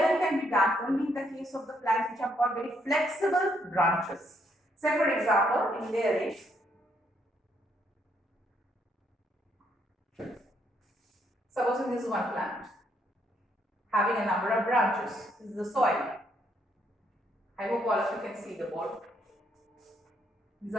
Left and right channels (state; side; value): normal; both; correlation 0.73